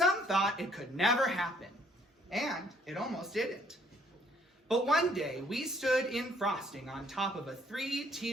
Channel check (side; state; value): both; normal; correlation 0.64